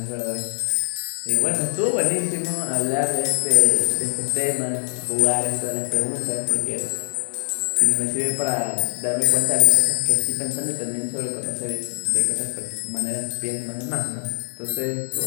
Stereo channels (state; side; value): silent; right; digital silence